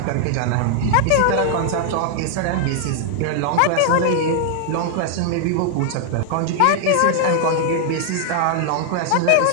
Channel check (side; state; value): both; different; correlation -0.01